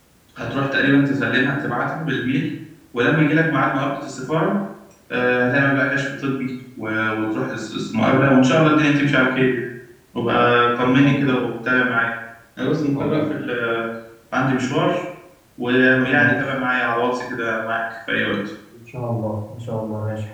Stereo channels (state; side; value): identical; both; correlation 1.00